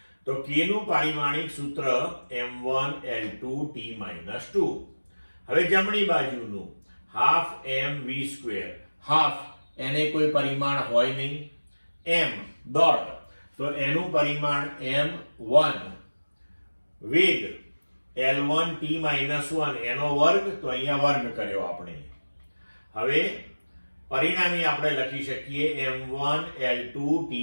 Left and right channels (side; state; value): both; inverted; correlation -1.00